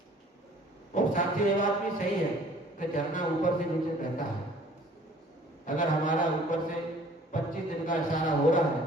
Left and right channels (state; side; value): normal; both; correlation 0.53